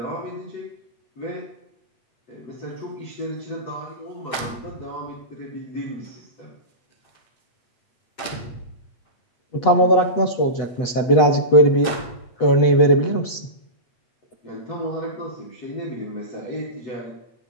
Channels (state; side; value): late; right; 8.1 ms